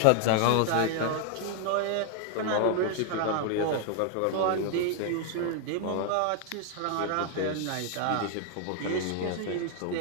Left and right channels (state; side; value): different; both; correlation 0.00